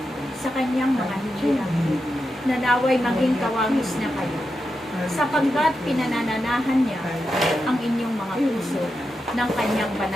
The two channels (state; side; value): normal; both; correlation 0.88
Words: sa kanyang mga hinirang, na naway maging kawangis na kayo, sapagkat pinanananahan niya ang inyong mga puso ng kanyang